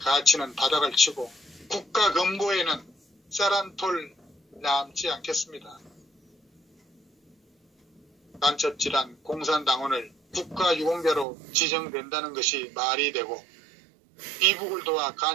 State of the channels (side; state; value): left; drops out; at 11.2 s